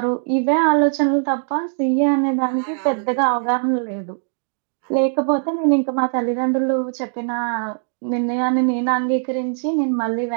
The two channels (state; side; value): silent; left; digital silence